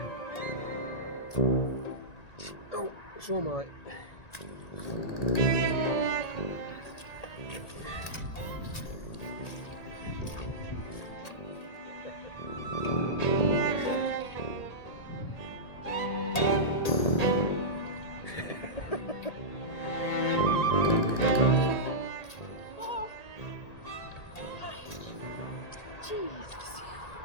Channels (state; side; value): late; right; 1.8 ms